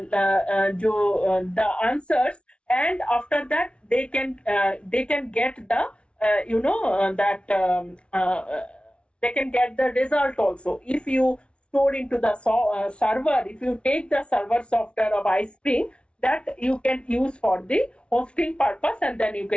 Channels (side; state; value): right; late; 0.059 ms